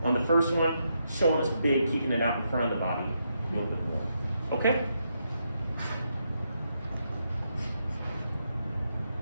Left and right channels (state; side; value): inverted; both; correlation -0.81